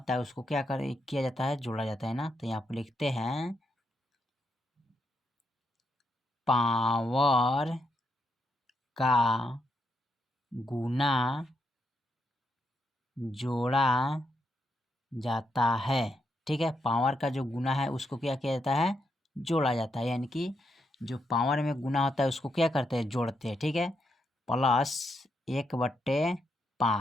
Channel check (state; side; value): normal; both; correlation 0.81